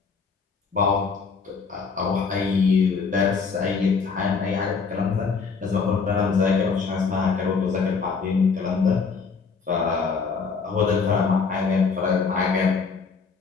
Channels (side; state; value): right; quieter; 5.2 dB